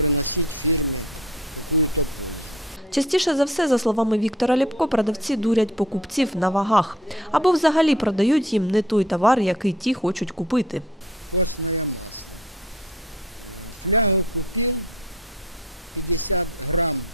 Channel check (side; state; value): both; normal; correlation 0.49